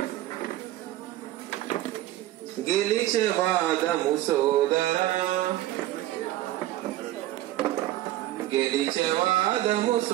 గెలిచే వాదము సోదరా గెలిచే వాదము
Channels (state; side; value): quieter; left; 14.9 dB